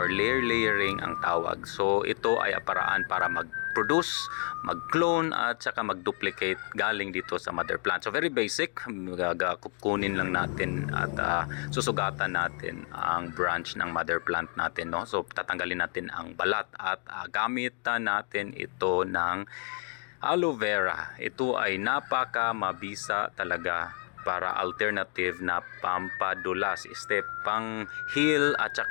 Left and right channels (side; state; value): right; quieter; 37.7 dB